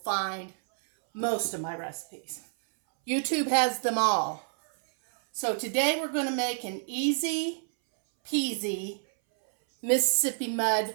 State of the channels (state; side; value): silent; left; 59 dB below the other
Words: most of my recipes. YouTube has them all. So today we're going to make an easy peasy Mississippi mud